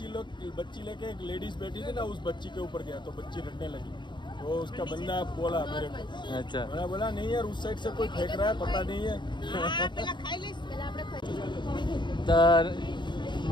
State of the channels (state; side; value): late; right; 0.22 ms